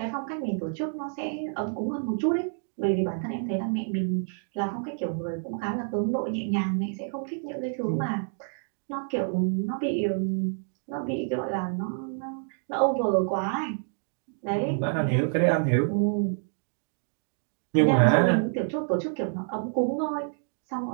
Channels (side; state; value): left; silent; digital silence